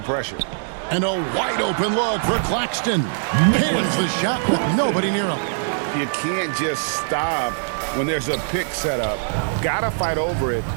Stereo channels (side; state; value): left; silent; digital silence